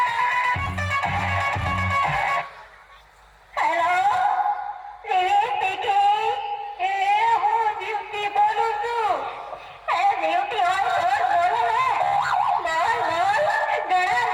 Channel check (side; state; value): both; identical; correlation 1.00